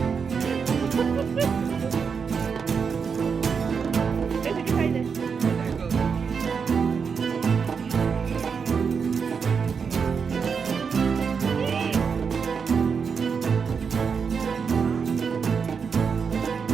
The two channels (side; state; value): left; quieter; 6.0 dB